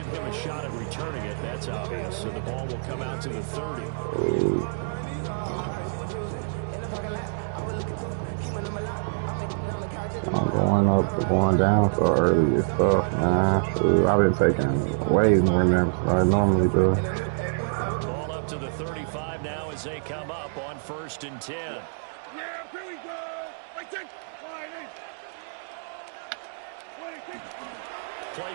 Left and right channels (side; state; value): left; silent; digital silence